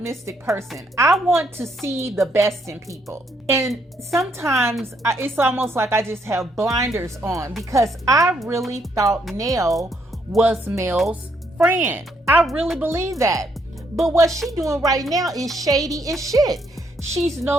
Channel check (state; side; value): normal; both; correlation 0.73